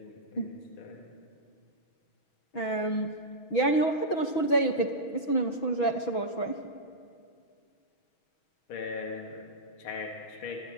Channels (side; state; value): right; late; 6.2 ms